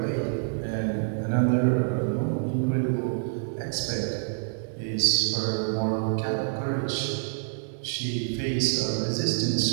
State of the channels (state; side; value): silent; left; digital silence